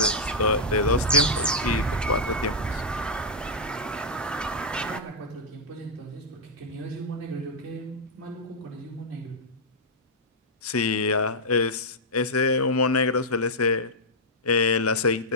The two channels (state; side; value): normal; both; correlation -0.05